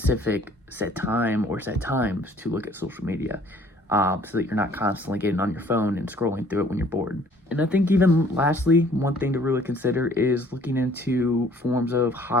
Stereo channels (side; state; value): both; normal; correlation 0.57